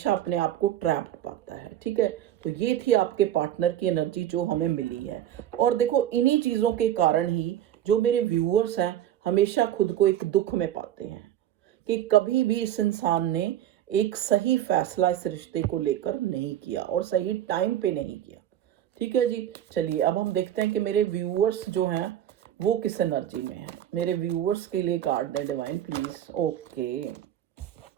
अपने आप को ट्रैप्ड पाता है। ठीक है, तो ये थी आपके पार्टनर की एनर्जी जो हमें मिली है। और देखो, इन्हीं चीजों के कारण ही जो मेरे व्यूअर्स हैं हमेशा खुद को एक दुख में पाते हैं कि कभी भी इस इंसान ने एक सही फैसला इस रिश्ते को लेकर नहीं किया और सही टाइम पे नहीं किया। ठीक है जी, चलिए अब हम देखते हैं कि मेरे व्यूअर्स जो हैं वो किस एनर्जी में हैं। मेरे व्यूअर्स के लिए कार्ड दें डिवाइन प्लीज। Okay,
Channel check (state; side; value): quieter; left; 11.6 dB